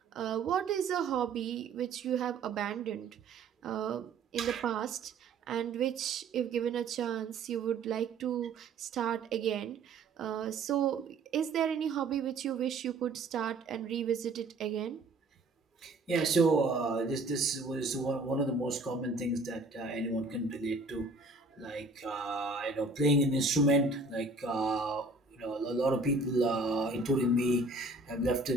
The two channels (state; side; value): quieter; left; 3.5 dB